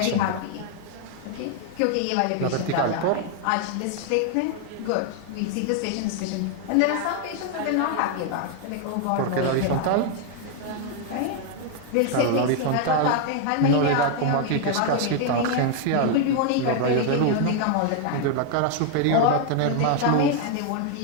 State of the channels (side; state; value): both; different; correlation 0.00